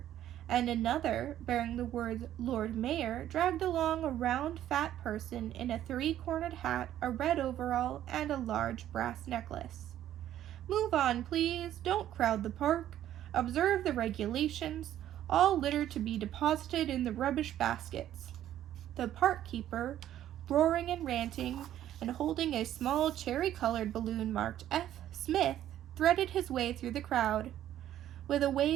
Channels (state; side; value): quieter; left; 11.9 dB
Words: and another, bearing the words Lord Mayor, dragged along a round, fat person in a three-cornered hat, a red overall, and a large brass necklace. Move on, please. Don't crowd the park. Observe the regulations. All litter to be deposited in the rubbish baskets. The park keeper, roaring and ranting, and holding a small cherry-colored balloon marked F. Smith, threaded his way through the crowd. With a